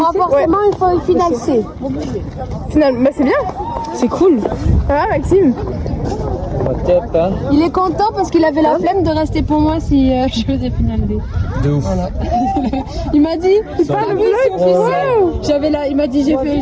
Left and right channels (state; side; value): identical; both; correlation 1.00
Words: forcément, il faut une finale C. Final, bah c'est bien. C'est cool. Ah Maxime. Top, hein. Il est content parce qu'il avait la flemme de rester pour moi si je faisais finale D. De ouf. Il m'a dit, Pas le oui, c'est vlog. officiel. Il m'a dit,